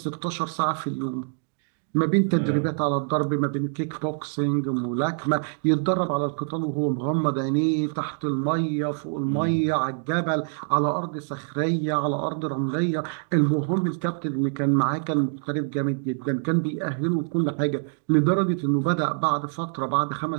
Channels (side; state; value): left; silent; 62 dB below the other